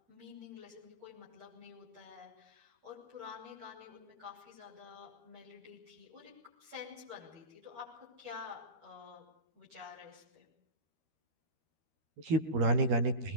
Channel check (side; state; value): left; late; 13 ms